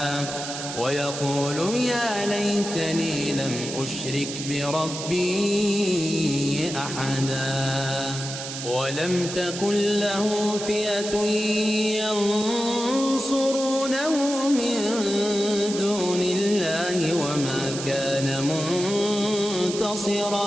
ويقول يا ليتني لم أشرك بربي أحدا ولم تكن له فئة ينصرونه من دون الله وما كان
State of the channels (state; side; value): noise; right; hiss, 7 dB below the sound